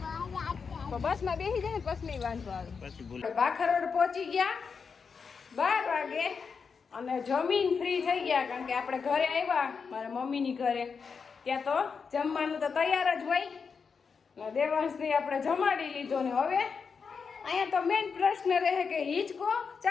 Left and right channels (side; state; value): right; quieter; 5.6 dB